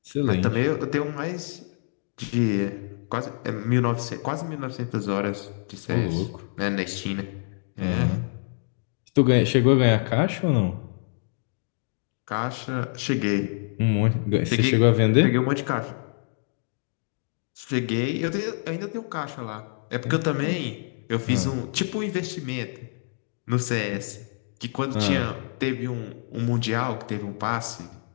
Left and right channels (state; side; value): silent; right; 61 dB below the other